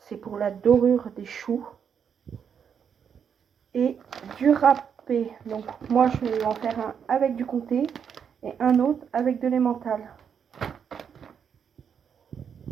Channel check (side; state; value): left; quieter; 7.4 dB